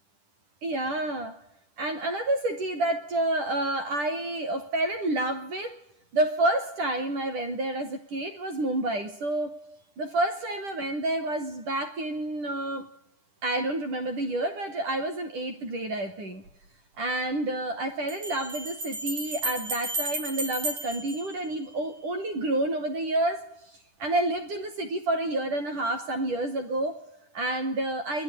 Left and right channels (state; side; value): late; left; 10 ms